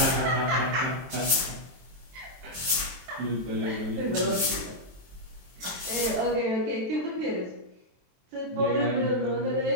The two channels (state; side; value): late; left; 23 ms